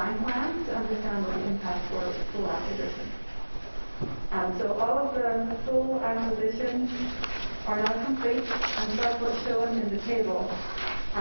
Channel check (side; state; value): both; inverted; correlation -1.00